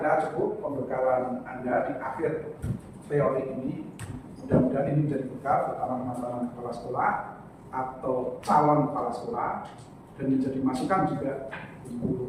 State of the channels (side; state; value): both; identical; correlation 1.00